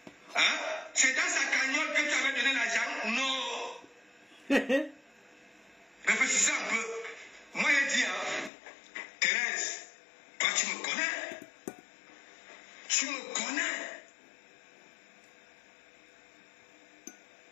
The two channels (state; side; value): drops out; right; at 8.5 s